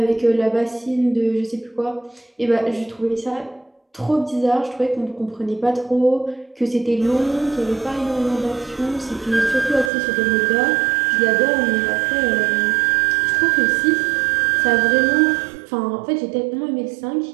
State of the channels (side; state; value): left; drops out; at 9.9 s